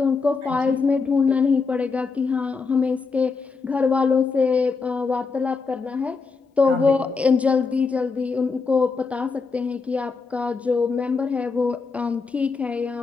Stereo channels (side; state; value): right; quieter; 4.6 dB